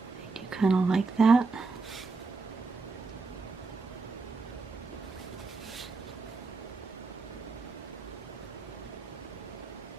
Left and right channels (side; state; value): left; quieter; 4.1 dB